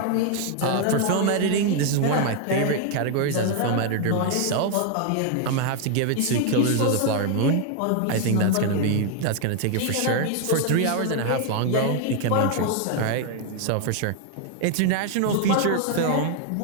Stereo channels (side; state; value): both; different; correlation 0.00